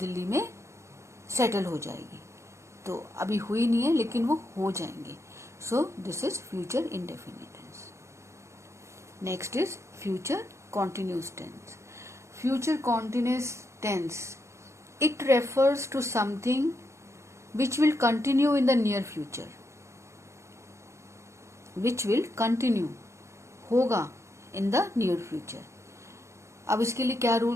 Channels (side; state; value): left; late; 0.14 ms